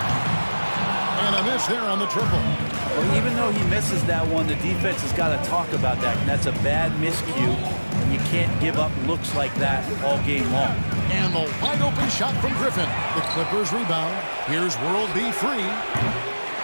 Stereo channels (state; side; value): inverted; both; correlation -1.00